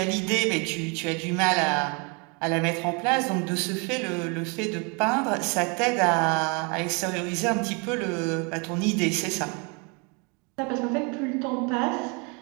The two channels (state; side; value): quieter; left; 32.5 dB